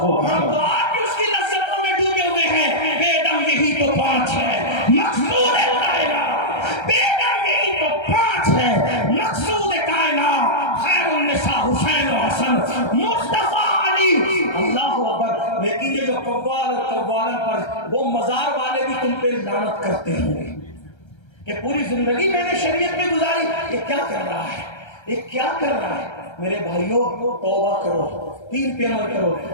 ہم تو آج اس کی لذتوں میں ڈوبے ہوئے ہیں. بیدم یہی تو 5 ہے مقصود کائنات، بیدم یہی تو 5 ہے مقصود کائنات. خیر النساء حسین و حسن مصطفیٰ علی. اللہ اکبر. لیکن یہ جو قوال اور قوالن پر وہ مزار والے بھی تم پہ لعنت کرتے ہوں گے کہ پوری زندگی میں نے شریعت میں گزاری، یہ کیا کر رہا ہے، یہ کیا کر رہا ہے. میرے بھائیوں توبہ کرو، دین پہ عمل کرو.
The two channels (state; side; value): late; right; 1.3 ms